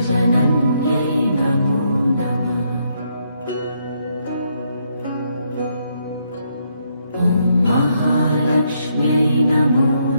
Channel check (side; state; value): both; inverted; correlation -0.75